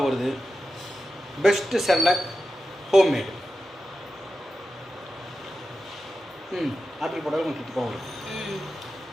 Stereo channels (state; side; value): normal; both; correlation 0.91